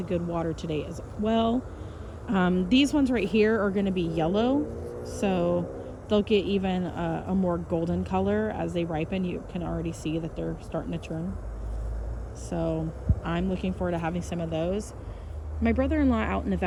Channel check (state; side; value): identical; both; correlation 1.00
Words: good water today as well. These ones right here are going to be yellow, so they'll get even a more golden color as they ripen. You can already see that they're starting to turn. So I'm looking forward to having some of those. My brother-in-law out in